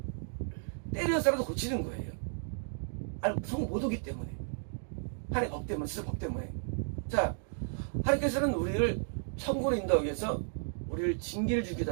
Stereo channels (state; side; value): silent; left; digital silence